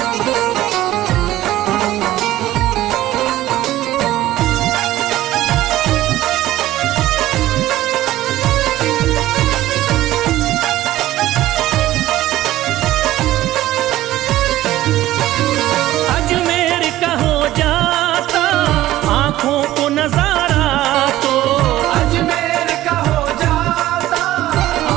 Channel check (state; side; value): quieter; left; 15.1 dB